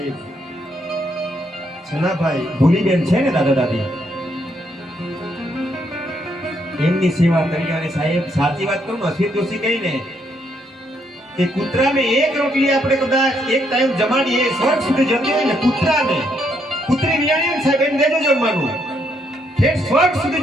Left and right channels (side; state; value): both; normal; correlation 0.74